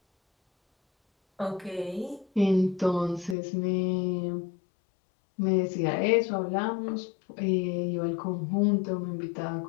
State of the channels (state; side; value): drops out; right; at 3.4 s